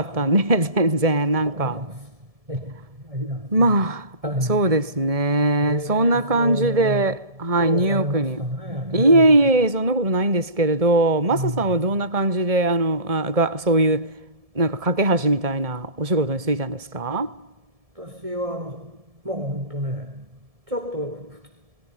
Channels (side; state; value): left; late; 1.7 ms